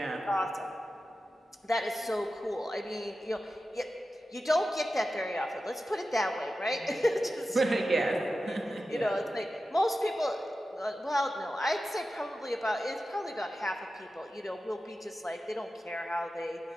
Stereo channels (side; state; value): both; normal; correlation 0.93